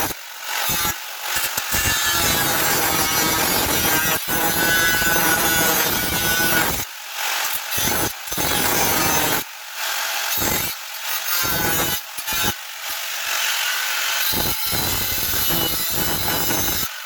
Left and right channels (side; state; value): both; identical; correlation 1.00